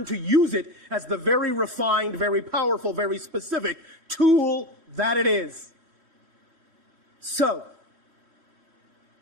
to use it as the very refined, very powerful, very specific tool that it is. So,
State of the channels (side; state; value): left; late; 3.1 ms